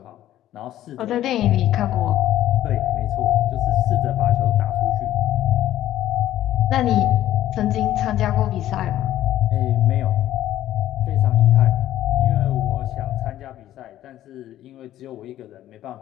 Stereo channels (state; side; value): quieter; right; 13.0 dB